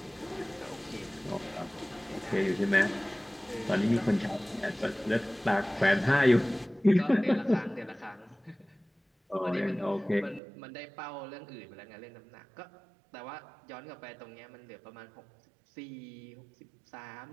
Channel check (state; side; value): drops out; left; at 10.4 s